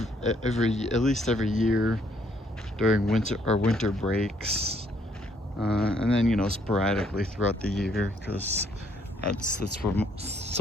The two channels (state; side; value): normal; both; correlation 0.68